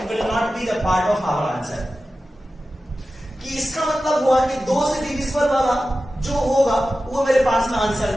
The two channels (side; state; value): both; normal; correlation 0.94